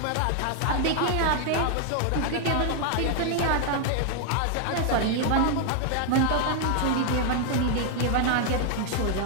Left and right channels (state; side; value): different; both; correlation 0.00